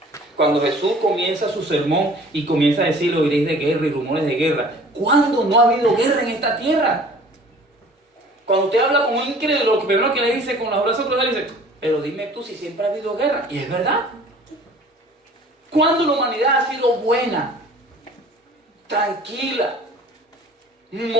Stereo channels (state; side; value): normal; both; correlation 0.49